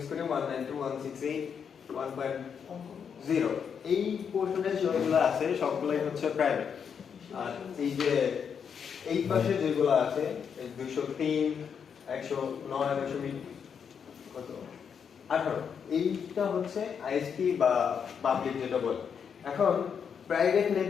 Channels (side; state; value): right; quieter; 7.1 dB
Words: করি 192.168.1.0, এই পোর্শনে যেগুলো আছে সবগুলোই হচ্ছে প্রাইভেট। আর এই যে এই পাশে যেগুলো আছে 203 109 কত 18, এইটা হচ্ছে আইএসপি বা পাবলিক যেটা বলে। এখন প্রাইভেট